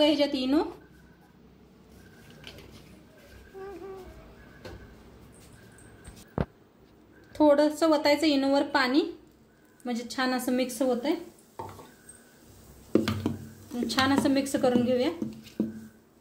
ह्याच्यात इनो. थोडंसं ओतायचं इनोवर पाणी, म्हणजे छान असं मिक्स होतंय. छान असं मिक्स करून घेऊया.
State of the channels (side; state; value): both; identical; correlation 1.00